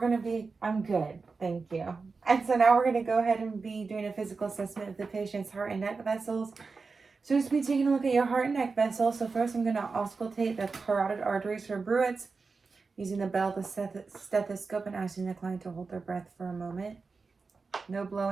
I'm good, thank you. And so now we're gonna go ahead and be doing a physical assessment of the patient's heart and neck vessels. So just be taking a look at your heart and neck vessels. So first I'm gonna auscultate the carotid arteries for bruits using the bell, the stethoscope, and asking the client to hold their breath for a moment. No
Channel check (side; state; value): left; quieter; 4.4 dB